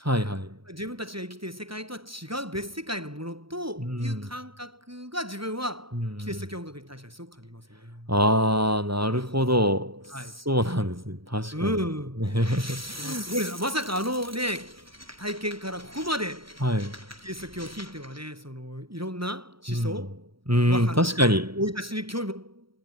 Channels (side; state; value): left; late; 0.75 ms